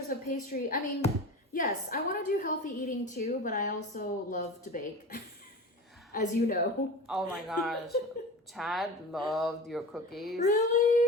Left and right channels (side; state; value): both; normal; correlation 0.32